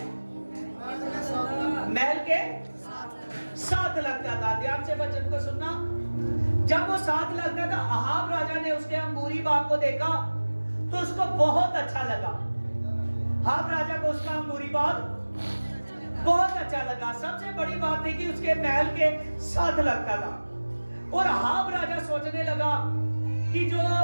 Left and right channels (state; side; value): inverted; both; correlation -1.00